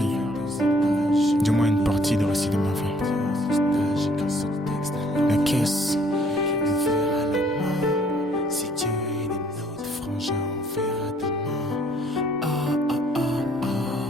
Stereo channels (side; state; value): both; normal; correlation 0.62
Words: Du moins une partie du récit de ma vie. La caisse. Si Dieu est de notre frangin, on verra demain.